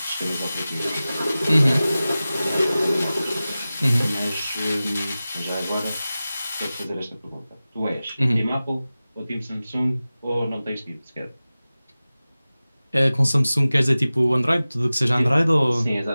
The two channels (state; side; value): inverted; both; correlation -0.96